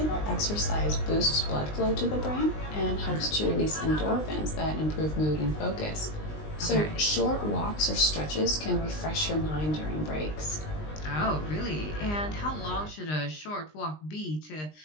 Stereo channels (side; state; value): right; late; 20 ms